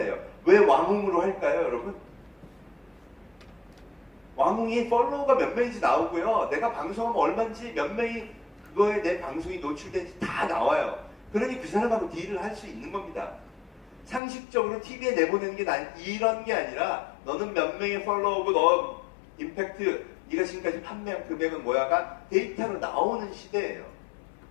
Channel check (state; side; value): drops out; right; at 14.2 s